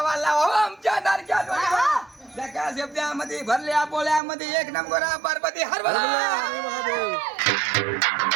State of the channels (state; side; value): drops out; left; at 4.2 s